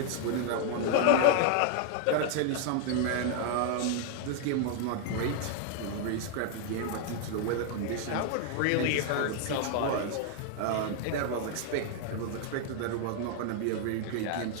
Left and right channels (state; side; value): different; both; correlation 0.00